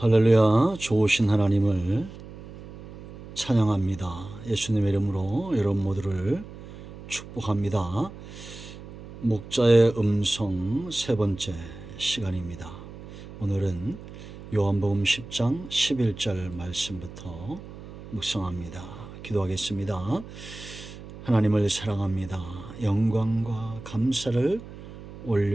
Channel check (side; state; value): right; noise; hum, 15 dB below the sound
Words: 할렐루야. 좋으신 하나님을 찬양합니다. 예수님의 이름으로 여러분 모두를 축복합니다. 목자의 음성 세 번째 시간입니다. 오늘은 요한복음 10장 11절 말씀부터 묵상합니다. 기도하겠습니다. 하나님을 사랑합니다. 영광과 감사를